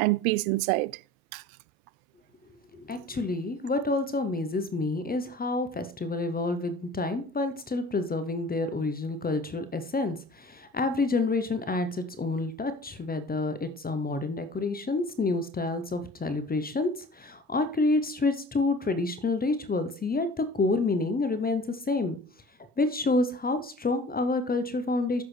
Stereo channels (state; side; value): normal; both; correlation 0.44